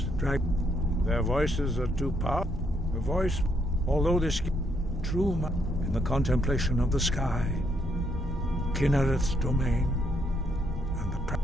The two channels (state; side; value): normal; both; correlation 0.74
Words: their voices are too powerful. The voice, although this true in the contemplation of the sky, Kinnereth's domain, and the